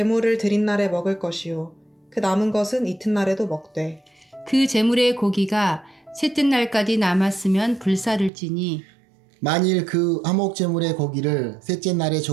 드린 날에 먹을 것이요 그 남은 것은 이튿날에도 먹되 그 제물의 고기가 셋째 날까지 남았으면 불사를지니 만일 그 화목제물의 고기를 셋째 날에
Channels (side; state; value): left; drops out; at 8.3 s